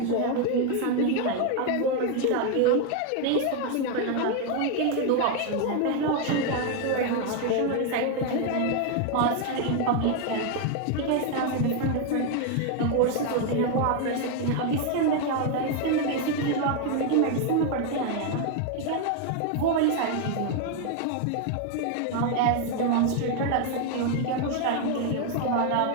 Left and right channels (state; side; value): different; both; correlation 0.01